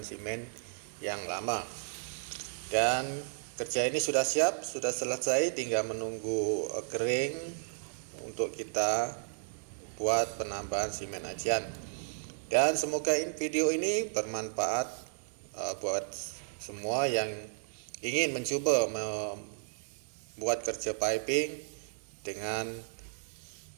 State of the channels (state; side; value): silent; left; 55 dB below the other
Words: semen yang lama. Dan kerja ini sudah siap, sudah selesai, tinggal menunggu kering untuk kita buat penambahan semen ajian. Dan semoga video ini bermanfaat buat semua yang ingin mencoba membuat kerja piping dengan